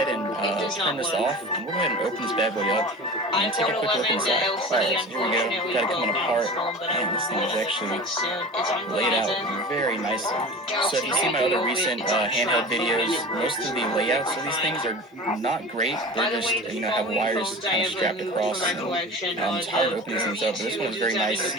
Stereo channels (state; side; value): normal; both; correlation 0.35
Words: and turn this off. And we'll go ahead and open this bad boy up and take a quick look inside. Alright, so here we go. Got it coming apart. Man, this thing is actually laid out very nicely. So if you see my other recent handheld videos, most of the layouts of these things are not great. They're just, have wires kind of strapped across. And, it's hard to open these things up, but this one is very nice.